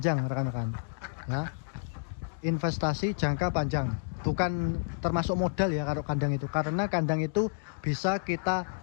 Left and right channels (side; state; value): right; silent; digital silence